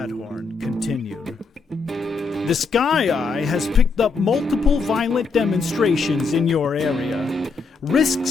continued. The Sky Eye has picked up multiple violent demonstrations in your area.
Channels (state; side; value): quieter; right; 4.4 dB